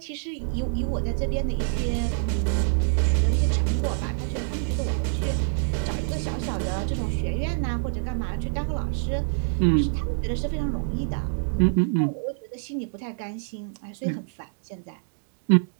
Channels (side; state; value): left; silent; digital silence